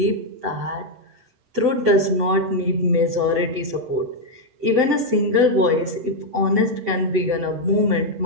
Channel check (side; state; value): left; late; 7.8 ms